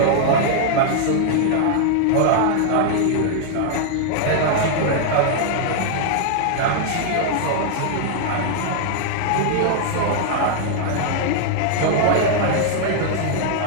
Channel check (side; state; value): both; different; correlation -0.01